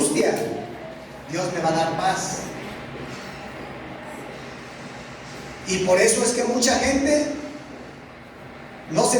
Dios me va a dar paz. Y por eso es que mucha gente no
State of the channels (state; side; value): identical; both; correlation 1.00